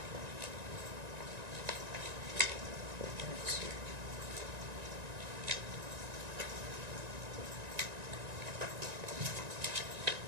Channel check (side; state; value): left; late; 1.9 ms